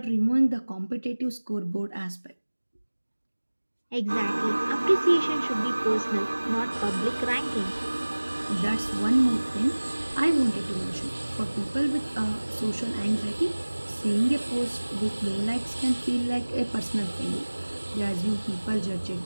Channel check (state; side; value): inverted; both; correlation -1.00